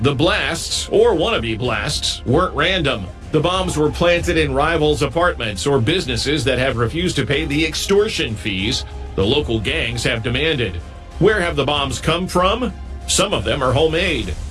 the blasts, or wannabe blasts, weren't random. The bombs were planted in rivals' apartments or businesses that have refused to pay the extortion fees the local gangs have demanded. Where have the bombs come from? Some of them are homemade.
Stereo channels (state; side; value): identical; both; correlation 1.00